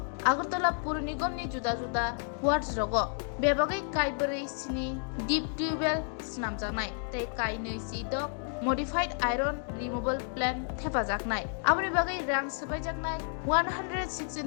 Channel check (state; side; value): silent; right; 57 dB below the other